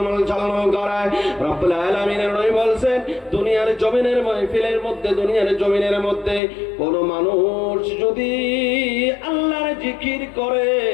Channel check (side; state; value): right; drops out; at 6.4 s